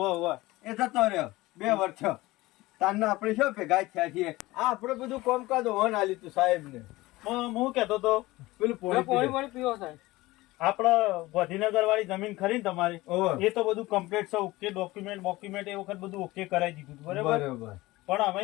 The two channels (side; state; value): right; quieter; 19.5 dB